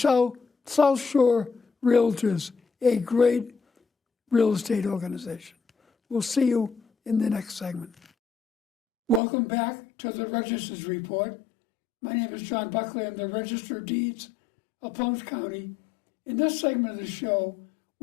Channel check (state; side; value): drops out; right; at 9.2 s